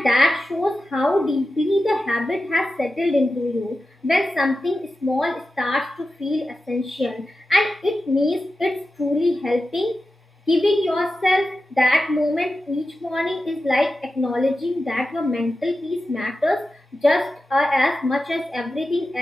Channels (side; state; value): both; normal; correlation 0.92